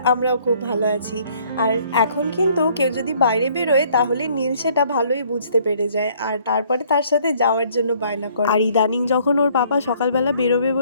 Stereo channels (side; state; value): both; inverted; correlation -0.61